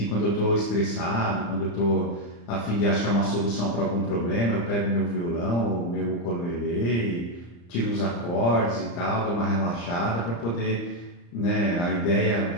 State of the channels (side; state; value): right; late; 35 ms